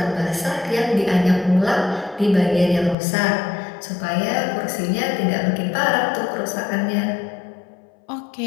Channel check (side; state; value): right; drops out; at 3.0 s